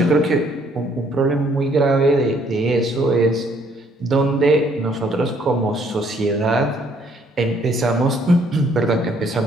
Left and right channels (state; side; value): normal; both; correlation 0.65